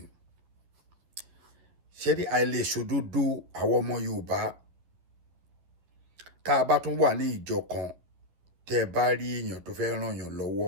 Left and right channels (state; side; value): late; left; 11 ms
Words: ṣé ní àìlèṣòdodo àwọn ọmọ Yorùbá tá a bá tún wà ní ìjọ kan tẹ́ ẹ bá rí èèyàn tó fẹ́ ràn yàn